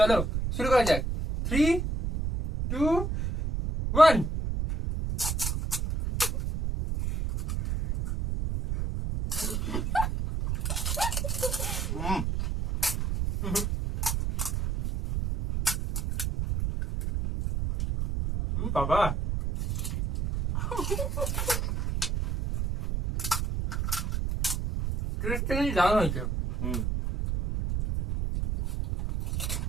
শুরু করা যাক। 3, 2, 1। বাবা টেস্টটা কিন্তু দারুণ হয়েছে।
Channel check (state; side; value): noise; right; rumble, 1 dB below the sound